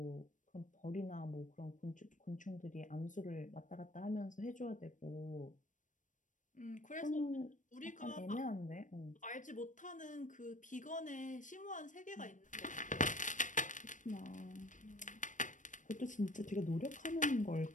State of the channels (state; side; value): late; right; 0.37 ms